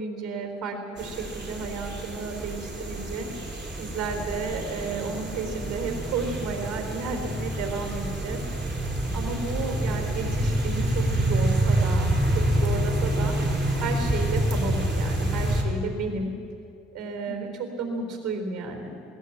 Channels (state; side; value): normal; both; correlation 0.68